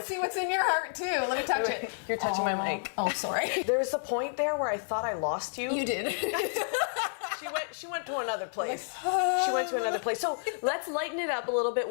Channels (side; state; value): right; silent; 58 dB below the other